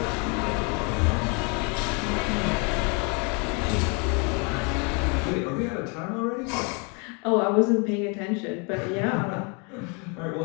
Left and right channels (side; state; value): right; quieter; 33.8 dB